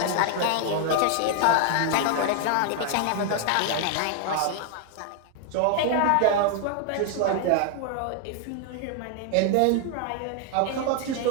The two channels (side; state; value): both; different; correlation 0.00